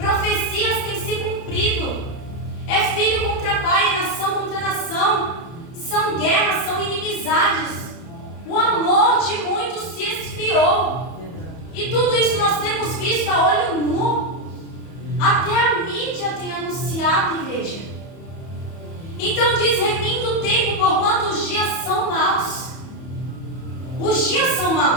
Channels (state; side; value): late; right; 31 ms